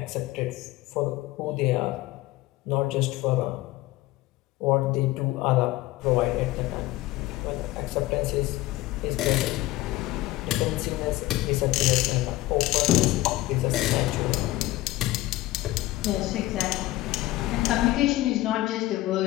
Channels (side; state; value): right; quieter; 17.6 dB